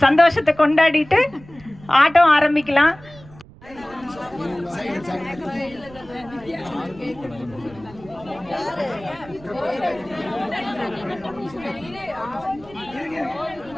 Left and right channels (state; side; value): noise; right; rumble, 21 dB below the sound